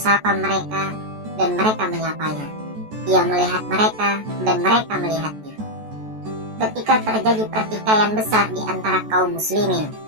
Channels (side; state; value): left; late; 14 ms